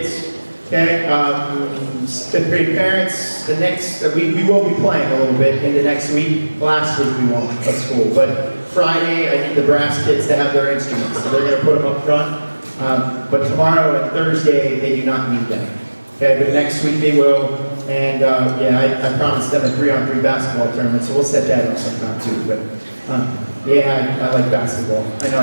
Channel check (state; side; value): inverted; both; correlation -1.00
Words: Okay, fifth grade parents, we will be playing a little bit into next week. Last week we won't at school, but Friday I need the brass kids to have their instruments, so they're going to put them up front. But tomorrow and Thursday they do not need them. Okay, but next week they will, and yeah, I promised them a 3-on-3 basketball tournament, so we'll set that up sometime too. But yeah, I like basketball. I know